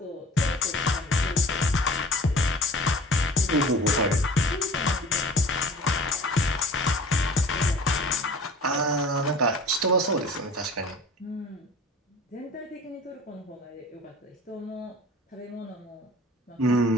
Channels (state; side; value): normal; both; correlation 0.43